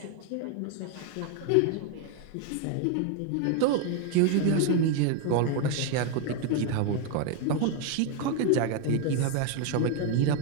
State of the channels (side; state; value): both; different; correlation 0.01